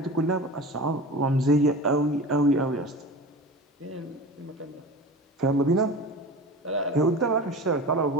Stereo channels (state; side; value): normal; both; correlation 0.33